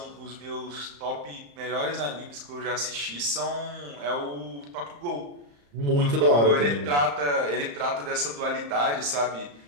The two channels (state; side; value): late; left; 35 ms